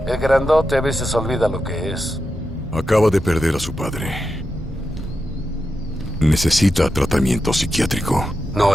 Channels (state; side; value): normal; both; correlation 0.88